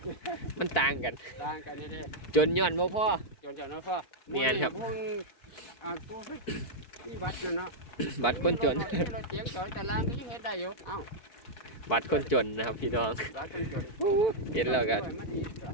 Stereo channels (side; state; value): right; late; 4.5 ms